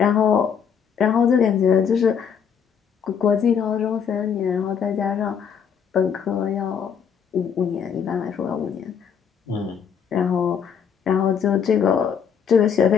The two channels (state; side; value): quieter; right; 7.3 dB